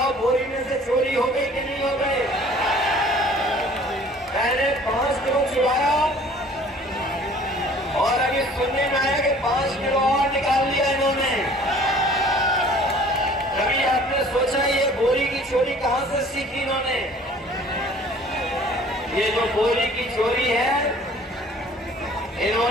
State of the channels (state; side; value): normal; both; correlation 0.51